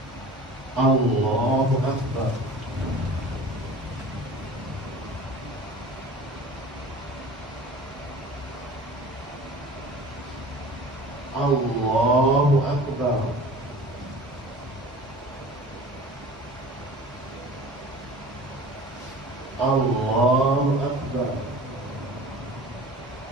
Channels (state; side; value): normal; both; correlation 0.41